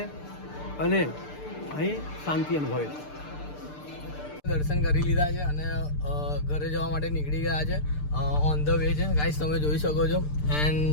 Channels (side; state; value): right; late; 6.7 ms